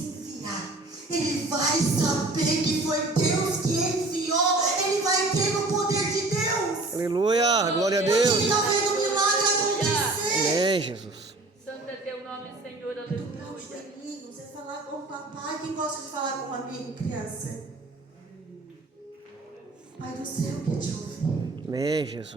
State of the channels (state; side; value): quieter; left; 3.0 dB